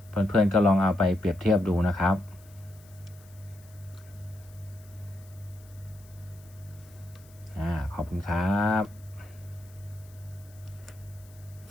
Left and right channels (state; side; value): noise; left; hiss, 26 dB below the sound